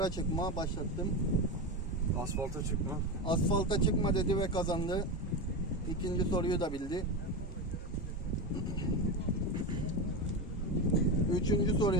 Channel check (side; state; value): both; normal; correlation 0.17